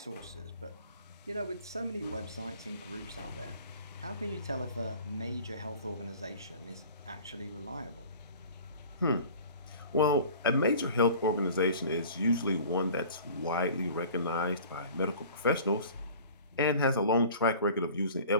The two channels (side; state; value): both; inverted; correlation -0.44